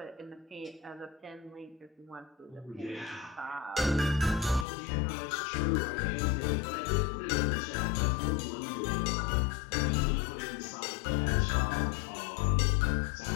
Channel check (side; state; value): right; drops out; at 4.7 s